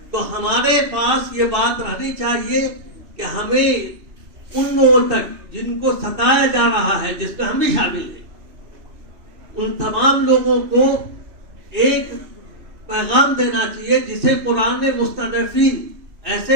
تو ہمارے پاس یہ بات رہنی چاہیے کہ ہمیں ان لوگوں تک جن کو ستایا جا رہا ہے، جس میں ہم بھی شامل ہیں، ان تمام لوگوں کو ایک پیغام دینا چاہیے جسے قرآن نے مستضعفین،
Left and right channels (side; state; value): left; late; 2.6 ms